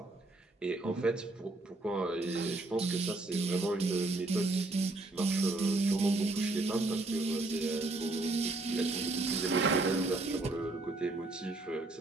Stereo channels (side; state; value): left; quieter; 3.0 dB